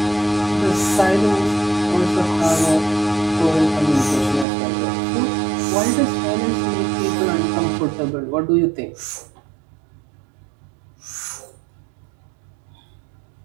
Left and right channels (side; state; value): left; drops out; at 4.5 s